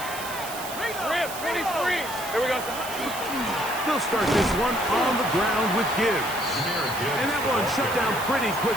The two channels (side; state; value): right; noise; hiss, 10 dB below the sound